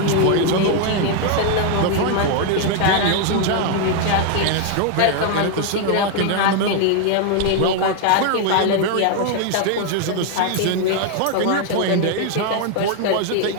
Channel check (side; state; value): both; different; correlation 0.00